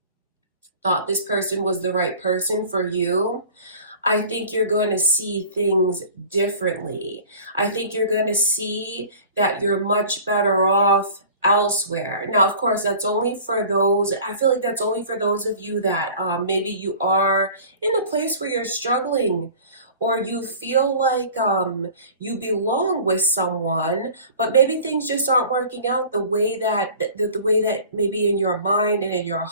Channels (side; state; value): both; inverted; correlation -0.44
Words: thought this person was the right person for you, I think you're going to see things differently. I think you're going to see that you're much better off elsewhere. Now, of course, that's only for those, I feel like that's only for those of you that maybe you are in a place where you're struggling, or you feel like you belong with someone, but maybe things just aren't working out the way that the way that maybe in your mind and in your